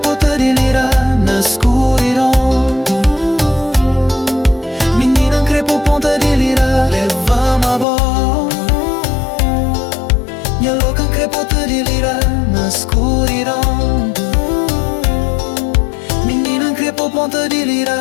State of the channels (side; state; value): right; drops out; at 7.9 s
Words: de lira na escuridão. Menina crepo ponta de lira, leva-me a bola. Minha louca crepota de lira na escuridão. Menina crepo ponta de lira.